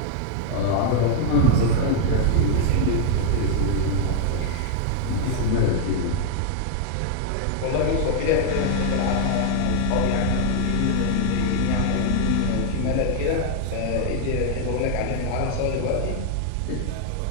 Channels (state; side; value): different; both; correlation 0.00